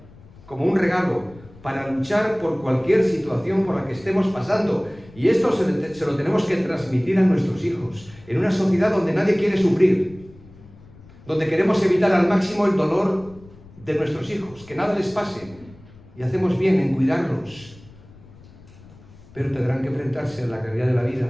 como un regalo para luchar por cualquier situación por la que estemos pasando. Y esto se lo tenemos que transmitir a nuestros hijos, en una sociedad donde nadie quiere sufrir, donde queremos evitar al máximo el dolor de nuestros hijos, que nada les pase, y hacemos bien en cuidarlos, pero tendrán que enfrentarse a la realidad de la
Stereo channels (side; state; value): left; noise; rumble, 22 dB below the sound